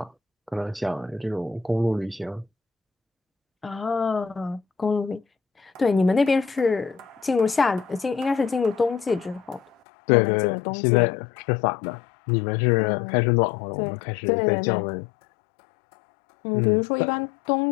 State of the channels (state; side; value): drops out; right; at 9.8 s